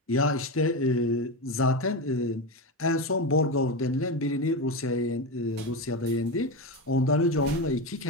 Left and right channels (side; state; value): both; normal; correlation 0.16